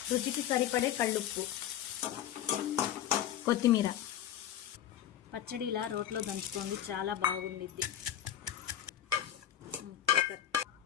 రుచికి సరిపడే కళ్ళుప్పు, కొత్తిమీర. పచ్చడి ఇలా రోట్లో దంచుకోండి, చాలా బాగుండిద్ది.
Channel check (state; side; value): quieter; right; 11.0 dB